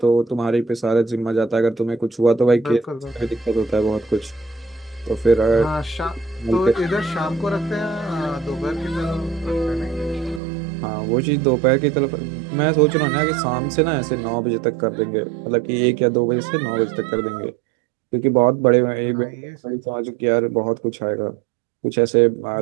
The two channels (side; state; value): left; drops out; at 10.4 s